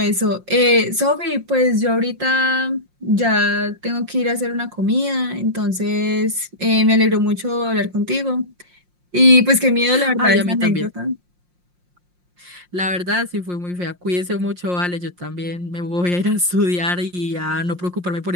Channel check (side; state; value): left; late; 5.6 ms